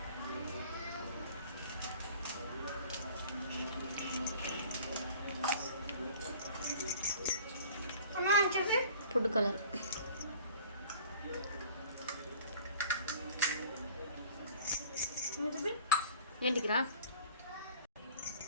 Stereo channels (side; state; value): both; inverted; correlation -0.47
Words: ఫుడ్ కలర్, ఏంటికి రా,